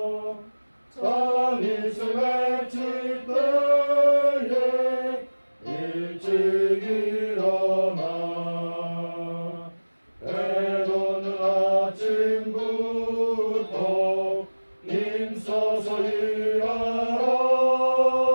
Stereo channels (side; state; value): both; inverted; correlation -1.00